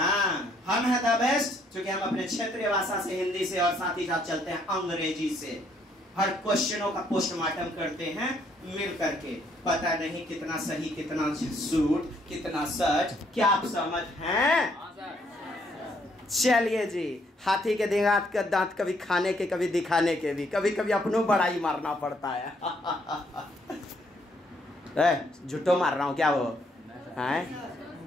हम है द बेस्ट, क्योंकि हम अपने क्षेत्रीय भाषा से, हिंदी से और साथ ही साथ चलते हैं अंग्रेजी से। हर क्वेश्चनों का पोस्टमार्टम करते हैं मिल करके। पता नहीं कितना सही, कितना झूठ, कितना सच, क्या आप समझ हैं? चलिए जी, हाथी के दांत कभी खाने के, कभी दिखाने के भी, कभी कभी अपनों बड़ाई मारना पड़ता है। झूठो मार रहा हूँ क्या वो है?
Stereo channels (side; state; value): both; normal; correlation 0.69